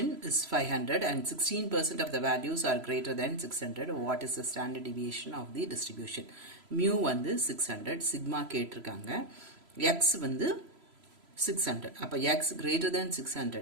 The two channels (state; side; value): late; left; 3.0 ms